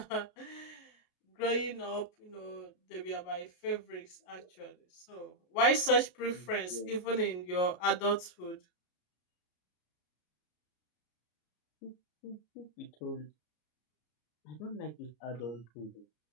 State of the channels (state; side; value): late; right; 33 ms